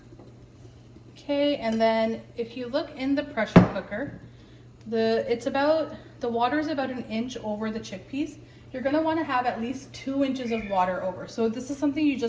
Okay, and then if you look in the pressure cooker, the water is about 1 inch over the chickpeas. You're going to want to have at least 2 inches of water over. So this is something you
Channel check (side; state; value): both; identical; correlation 1.00